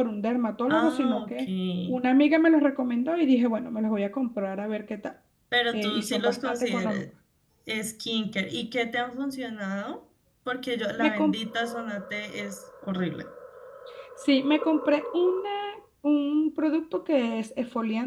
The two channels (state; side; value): identical; both; correlation 1.00